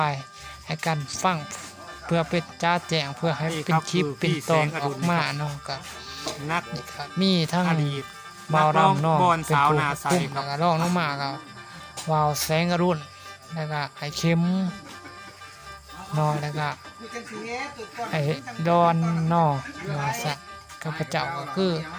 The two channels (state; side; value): identical; both; correlation 1.00